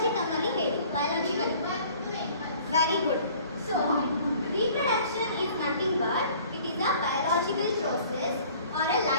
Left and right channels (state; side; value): inverted; both; correlation -0.52